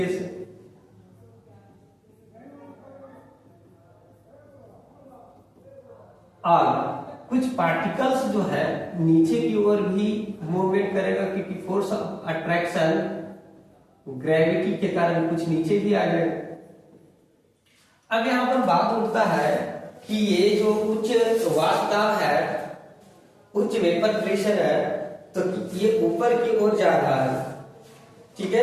से। और कुछ पार्टिकल्स जो है नीचे की ओर भी मूवमेंट करेगा क्योंकि फोर्स ऑफ अट्रैक्शन ग्रेविटी के कारण कुछ नीचे भी आ जाएगा। अब यहां पर बात उठता है कि ये जो उच्च वाष्पदाब है, उच्च वेपर प्रेशर है, तो ये ऊपर की ओर जा रहा है, ठीक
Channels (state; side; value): identical; both; correlation 1.00